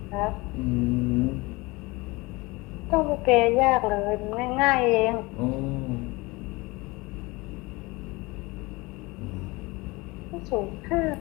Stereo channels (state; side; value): quieter; right; 23.6 dB